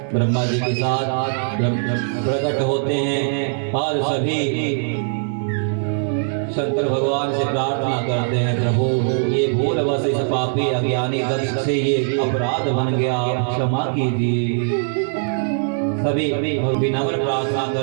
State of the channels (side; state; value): left; silent; 65 dB below the other